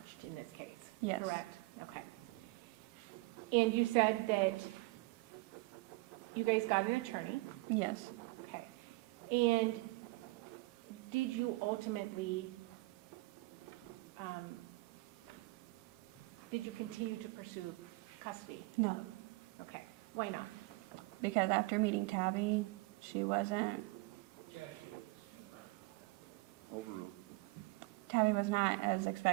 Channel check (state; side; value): quieter; left; 23.3 dB